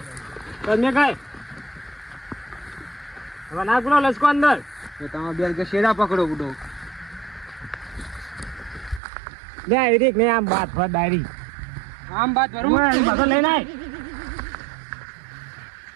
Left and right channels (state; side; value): drops out; left; at 9.0 s